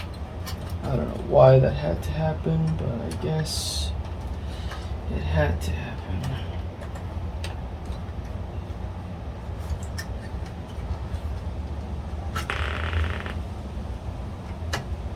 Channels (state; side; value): identical; both; correlation 1.00